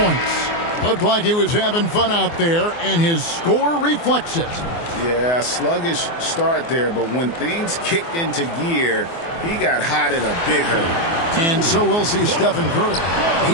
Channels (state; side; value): late; right; 24 ms